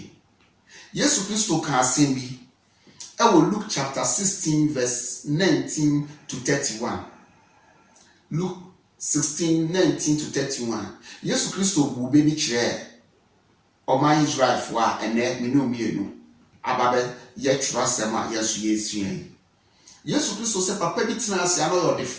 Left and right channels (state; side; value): identical; both; correlation 1.00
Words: Yesu Kristo kan asem bi. E wo Luke chapter 16 verse 19 to 31. Luke 16 19 to 31. Yesu Kristo bu be bi kire. O man Israel fo a ene me no mienu. Ababe ye trasema yesu yesuen Yesu Kristo se papa bi tena ase ano